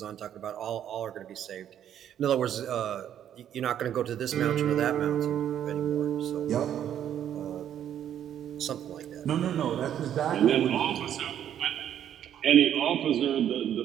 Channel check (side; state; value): left; quieter; 10.1 dB